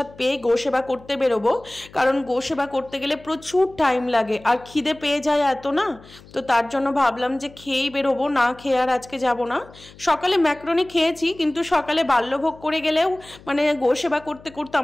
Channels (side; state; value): left; noise; hum, 22 dB below the sound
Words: পেয়ে গোসেবা করতে বেরোবো, কারণ গোসেবা করতে গেলে প্রচুর টাইম লাগে আর খিদে পেয়ে যায় এত না, তো তার জন্য ভাবলাম যে খেয়েই বেরোবো, না খেয়ে আর আজকে যাব না। সকালে ম্যাক্রোনি খেয়েছি, কিন্তু সকালে বাল্যভোগ করে গেলেও মানে গোসেবা করতে করতে